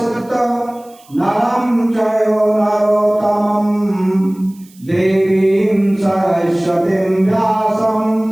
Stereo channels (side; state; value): right; noise; hiss, 28 dB below the sound